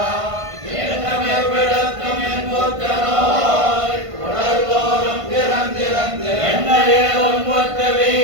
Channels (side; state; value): left; late; 1.5 ms